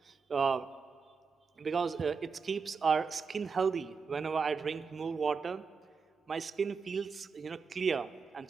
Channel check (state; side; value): quieter; left; 5.3 dB